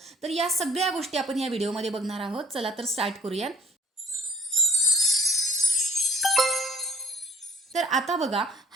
तर या सगळ्या गोष्टी आपण या व्हिडिओमध्ये बघणार आहोत. चला तर स्टार्ट करूया. तर आता बघा,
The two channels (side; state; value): both; normal; correlation 0.55